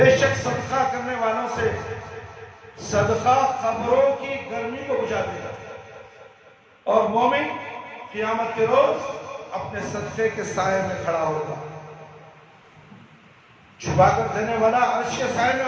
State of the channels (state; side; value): identical; both; correlation 1.00